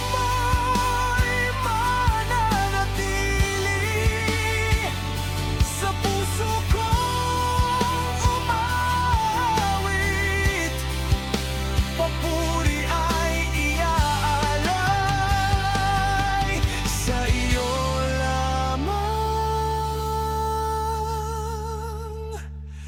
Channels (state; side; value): identical; both; correlation 1.00